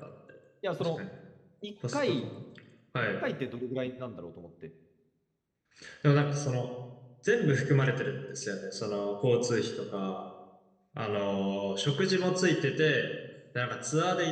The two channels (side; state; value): both; identical; correlation 1.00